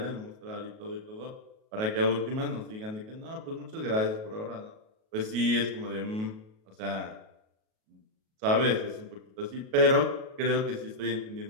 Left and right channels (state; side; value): late; left; 37 ms